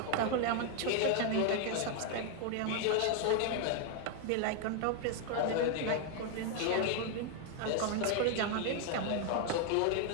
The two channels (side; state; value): both; different; correlation 0.00